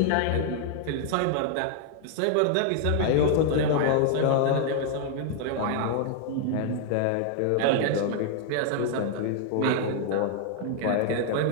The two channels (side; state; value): both; different; correlation 0.00